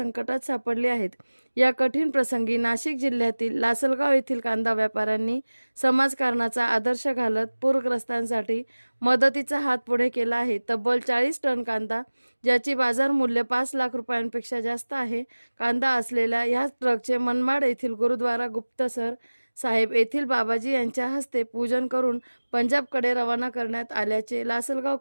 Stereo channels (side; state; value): both; inverted; correlation -1.00